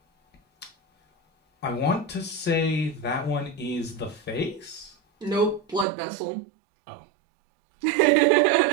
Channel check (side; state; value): left; drops out; at 5.9 s